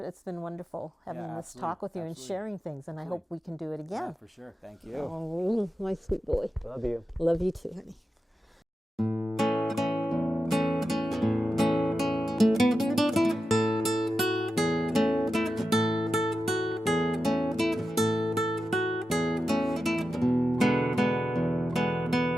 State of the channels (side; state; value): both; normal; correlation 0.91